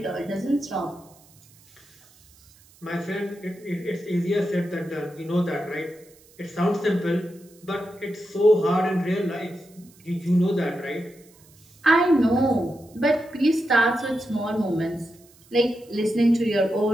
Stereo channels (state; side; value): noise; right; hiss, 28 dB below the sound